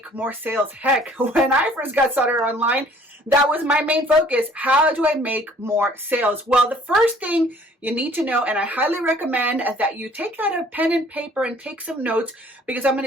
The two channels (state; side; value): normal; both; correlation 0.56